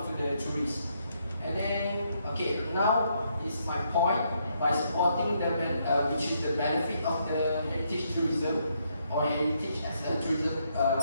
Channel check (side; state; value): both; inverted; correlation -0.75